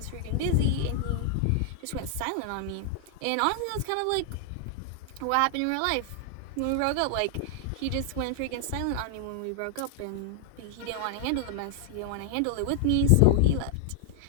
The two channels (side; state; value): both; different; correlation 0.00